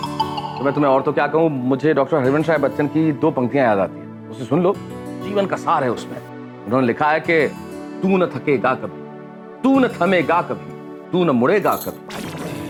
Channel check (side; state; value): both; identical; correlation 1.00